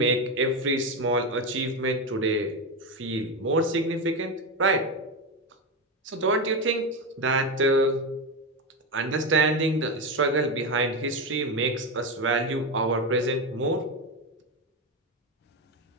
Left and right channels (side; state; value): both; normal; correlation 0.14